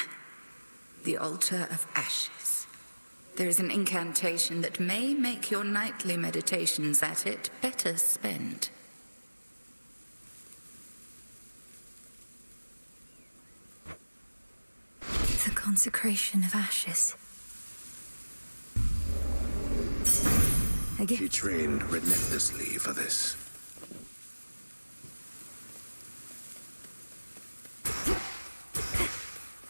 The altar of ashes. There is an incantation that may make your nightly meditations at it better spent. The consecration of ashes. She trained relentlessly for this.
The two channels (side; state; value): both; inverted; correlation -1.00